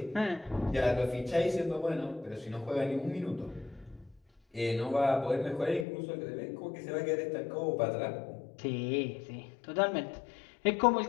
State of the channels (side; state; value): right; drops out; at 5.9 s